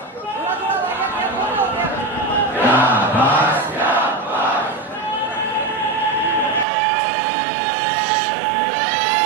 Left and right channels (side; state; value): left; drops out; at 6.7 s